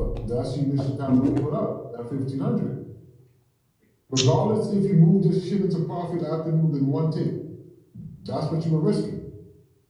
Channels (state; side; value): identical; both; correlation 1.00